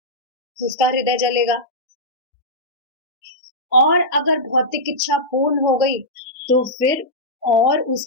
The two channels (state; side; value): normal; both; correlation -0.11